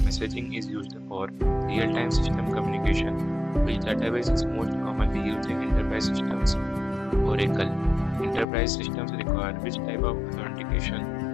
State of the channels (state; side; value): drops out; right; at 8.5 s